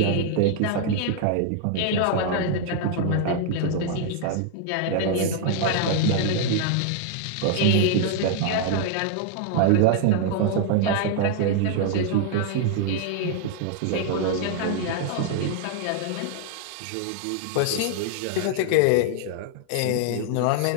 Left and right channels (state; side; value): different; both; correlation 0.00